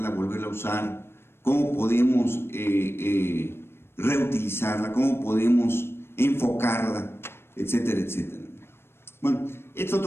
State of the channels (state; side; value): late; right; 0.12 ms